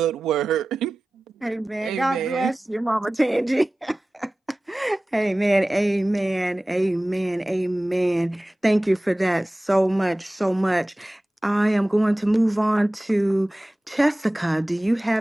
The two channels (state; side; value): normal; both; correlation 0.97